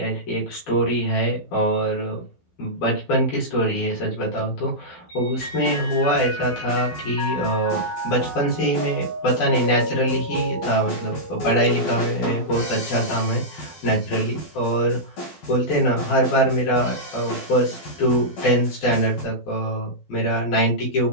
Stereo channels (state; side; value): late; right; 12 ms